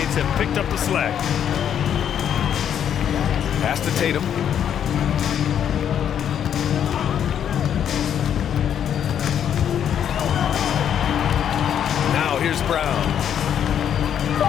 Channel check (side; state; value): right; quieter; 9.2 dB